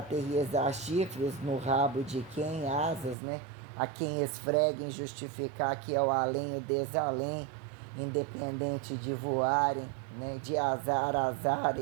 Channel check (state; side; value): drops out; left; at 3.2 s